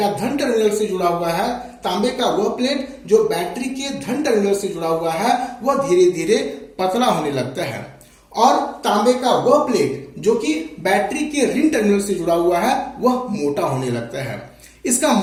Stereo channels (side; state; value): both; identical; correlation 1.00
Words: धन टर्मिनल से जुड़ा हुआ है, तांबे का वह प्लेट जो बैटरी के धन टर्मिनल से जुड़ा हुआ है, वह धीरे धीरे पतला होने लगता है और तांबे का वह प्लेट जो कि बैटरी के ऋण टर्मिनल से जुड़ा हुआ है वह मोटा होने लगता है। इसका